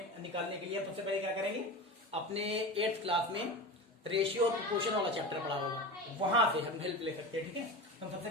निकालने के लिए हम सबसे पहले क्या करेंगे, अपने 8th क्लास में रेशियो और प्रोपोर्शन वाला चैप्टर पढ़ा होगा, वहां से हम हेल्प ले सकते हैं। ठीक है, तो सबसे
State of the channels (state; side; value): normal; both; correlation 0.28